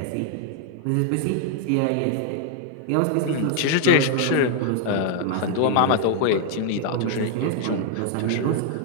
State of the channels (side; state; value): both; different; correlation 0.00